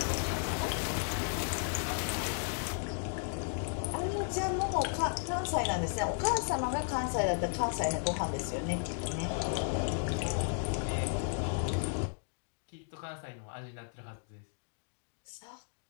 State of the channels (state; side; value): silent; right; digital silence